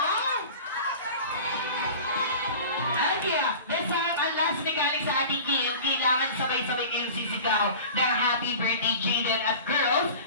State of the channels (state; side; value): inverted; both; correlation -0.38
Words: Okay, this time, ang last mechanic sa ating game, kailangan sabay-sabay kayong sisigaw ng Happy Birthday Jaden at girls,